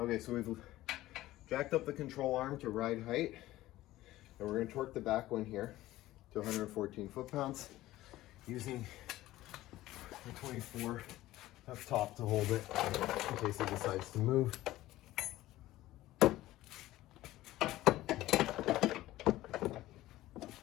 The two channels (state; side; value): quieter; right; 16.1 dB